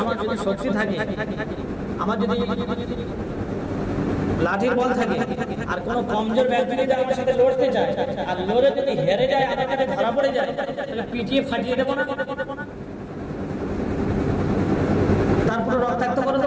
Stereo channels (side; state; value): both; identical; correlation 1.00